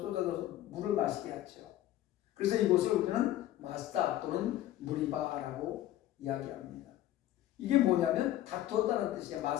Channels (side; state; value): right; quieter; 13.8 dB